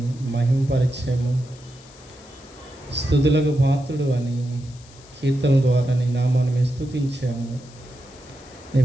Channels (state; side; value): noise; left; hiss, 24 dB below the sound